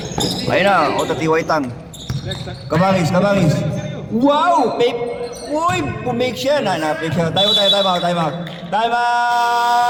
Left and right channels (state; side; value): identical; both; correlation 1.00